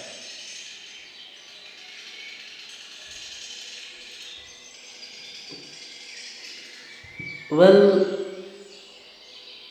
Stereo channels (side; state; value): both; identical; correlation 1.00